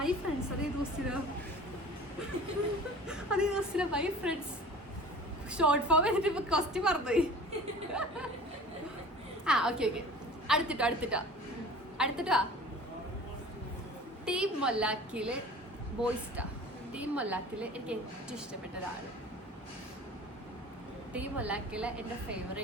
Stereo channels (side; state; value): both; normal; correlation 0.42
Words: ഫ്രണ്ട്സ് അതേ ദിവസത്തിലോ മൈ ഫ്രണ്ട്സ് ഷോർട്ട് ഫോം എന്നിട്ട് ഇപ്പൊ ക്വസ്റ്റ്യൻ പറഞ്ഞുപോയി. ഓക്കെ അടുത്തിട്ടോ ടീം മൊല്ലാക്കിയില് ബോയ്സ്റ്റാ. ടീം മൊല്ലാക്കില് എനിക്ക് ഏറ്റവും ഇഷ്ടപ്പെട്ട ഒരാള്. ടീം മൊല്ലാക്കില് എന്റെ